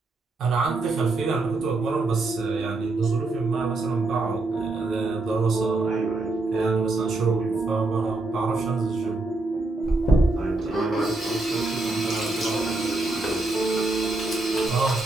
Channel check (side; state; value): left; quieter; 3.1 dB